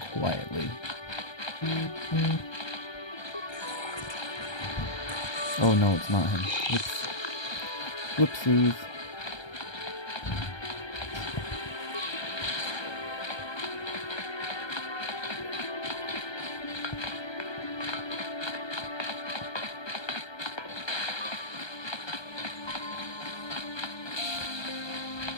quietly. Oh no, it's not him. Whoops. Whoopsies.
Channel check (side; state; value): right; late; 1.2 ms